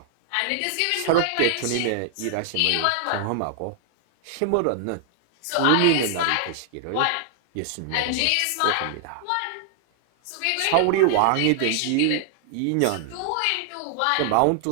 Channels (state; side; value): different; both; correlation 0.00